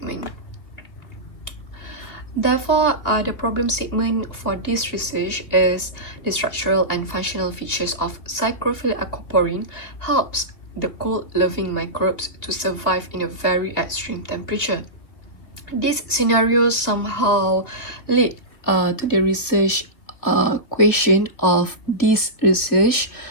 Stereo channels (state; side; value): late; right; 2.8 ms